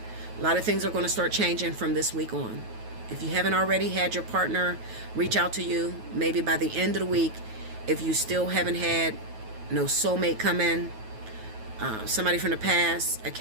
A lot of things are going to start changing from this week on. If you haven't already had your partner reach out to you, maybe by the end of the week, if you still haven't had no soulmate come in, somebody from the past, a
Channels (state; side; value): late; left; 9.3 ms